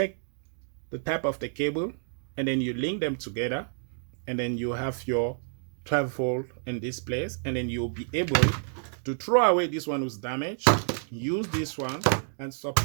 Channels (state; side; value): silent; left; digital silence